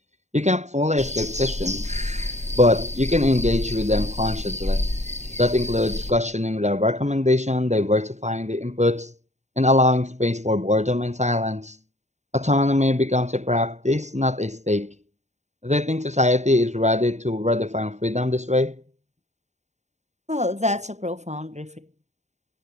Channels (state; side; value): late; left; 0.33 ms